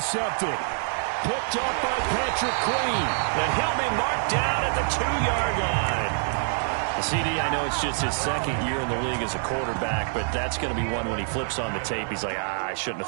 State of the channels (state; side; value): silent; left; 61 dB below the other